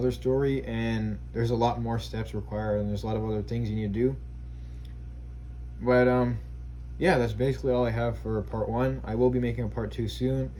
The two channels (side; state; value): both; identical; correlation 1.00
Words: story, and there's a lot more steps required, and there's a lot of other things you need to do. But yeah, that's basically all I have for part 1. I will be making a part 2 soon.